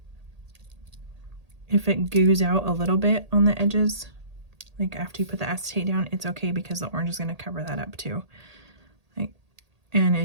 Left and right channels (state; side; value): late; left; 1.8 ms